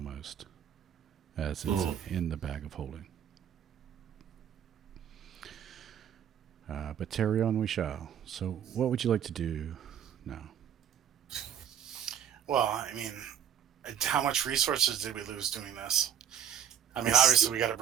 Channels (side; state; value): left; quieter; 9.1 dB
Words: As it's in the bag of holding. But carry on we shall. So what would you like to do now? Well, I mean, how much resources did we lose doing this? I mean, obviously we got to